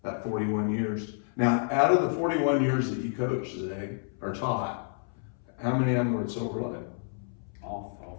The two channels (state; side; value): silent; right; 58 dB below the other